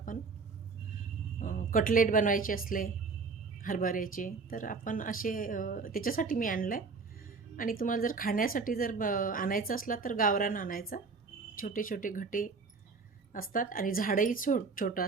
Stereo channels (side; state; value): left; quieter; 4.6 dB